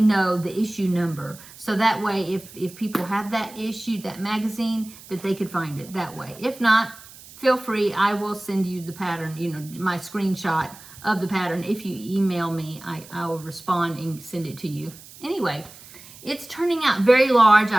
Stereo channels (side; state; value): right; noise; hiss, 19 dB below the sound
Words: know the issue number. So that way, if people have that issue, that magazine, that they could find it that way. If not, feel free, I will send you the pattern, you know, my screenshot of the pattern. If you email me, I will respond and send it to you. Anyway, it's turning out very large,